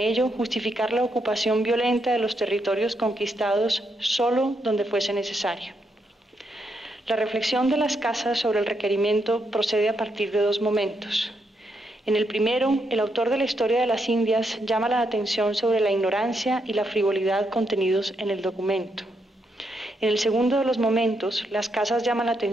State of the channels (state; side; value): normal; both; correlation 0.79